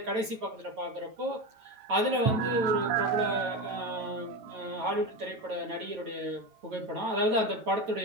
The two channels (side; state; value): left; late; 9.2 ms